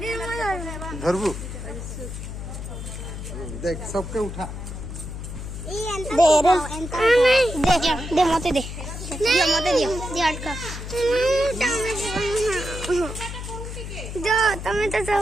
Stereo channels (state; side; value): noise; left; hum, 8 dB below the sound